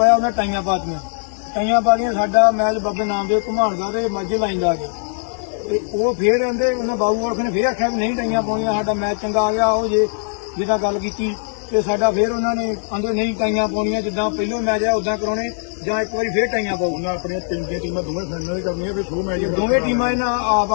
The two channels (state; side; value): silent; right; digital silence